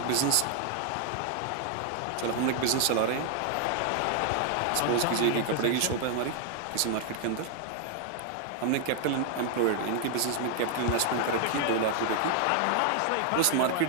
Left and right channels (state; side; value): different; both; correlation 0.00